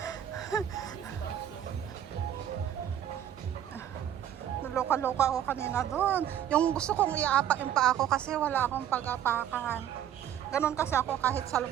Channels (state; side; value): quieter; left; 10.5 dB